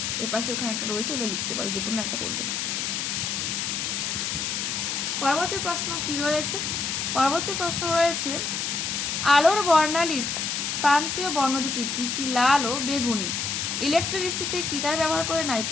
এ পাশে ওখানে একটা রয়েছে, ওগুলো লিখতে পারো, যে কোনো একটা করবে। পরবর্তী প্রশ্ন কি রয়েছে? পরবর্তী প্রশ্ন রয়েছে আলোর বর্ণালীর প্রান্তীয় বর্ণ দুটি কি কি? লাল ও বেগুনি। ইলেকট্রিসিটিতে কি তার ব্যবহার করে?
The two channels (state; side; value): noise; left; hiss, 1 dB below the sound